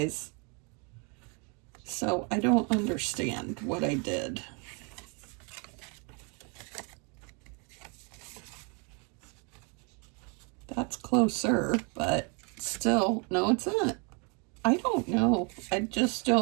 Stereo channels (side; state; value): left; quieter; 34.2 dB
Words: So I don't understand what I did. That's closer, but still, no, it's not. I don't know. I just